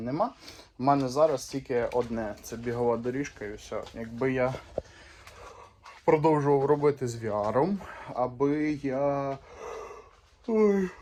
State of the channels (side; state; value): both; identical; correlation 1.00